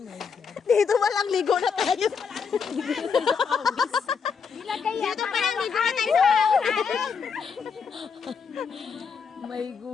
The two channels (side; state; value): right; quieter; 6.0 dB